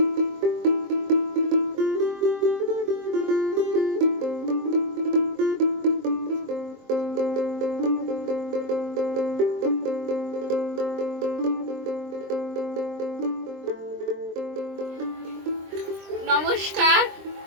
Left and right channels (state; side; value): late; left; 23 ms